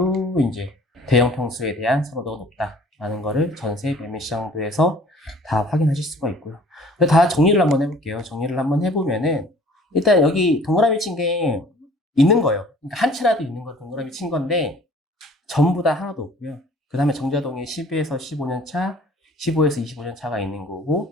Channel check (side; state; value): both; normal; correlation 0.52